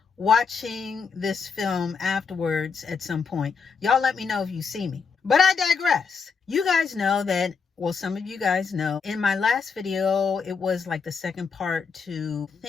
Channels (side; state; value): right; quieter; 5.5 dB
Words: watching this film afterwards at some point, y'all let me know if you see me. But I digress. You guys know that, well, some of you guys know, in my last video, it was like the second part to